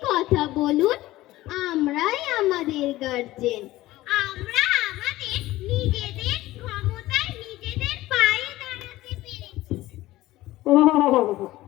কথা বলুন, আমরাই আমাদের গার্জেন। আমরা আমাদের নিজেদের ক্ষমতায় নিজেদের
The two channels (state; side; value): quieter; right; 16.9 dB